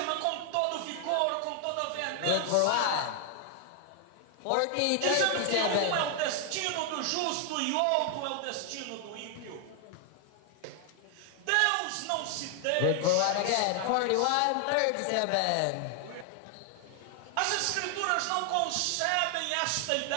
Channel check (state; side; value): different; both; correlation 0.00